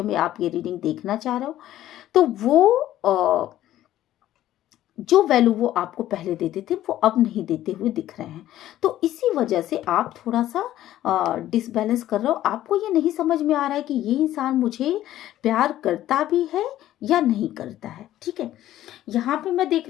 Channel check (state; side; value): quieter; right; 13.4 dB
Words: में आप ये रीडिंग देखना चाह रहे हो। तो वो जो वैल्यू वो आपको पहले देते थे वो अब नहीं देते हुए दिख रहे हैं। तो इसी वजह से आप थोड़ा सा डिसबैलेंस कर रहे हो। आपको ये नहीं समझ में आ रहा है कि ये इंसान मुझे प्यार करता भी है या नहीं करता है, ठीक है। यहाँ पे मैं देख